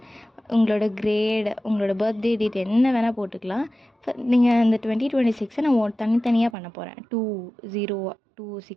உங்களோட கிரேட், உங்களோட பர்த்டே டேட் என்ன வேணால் போட்டுக்கலாம். நீங்கள் இந்த 2026 நான் தனித்தனியாக பண்ண போகிறேன்.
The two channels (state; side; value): drops out; left; at 6.6 s